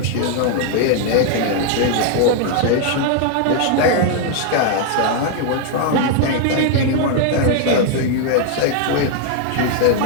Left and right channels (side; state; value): both; different; correlation 0.00